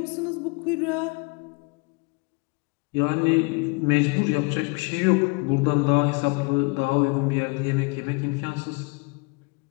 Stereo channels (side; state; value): right; quieter; 30.1 dB